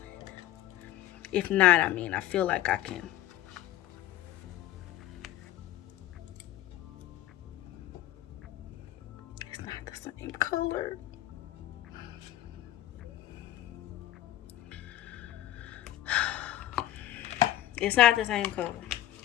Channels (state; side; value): quieter; right; 13.7 dB